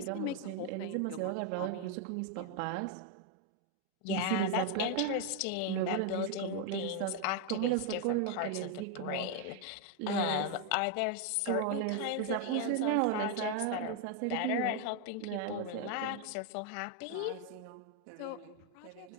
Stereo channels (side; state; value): both; different; correlation 0.01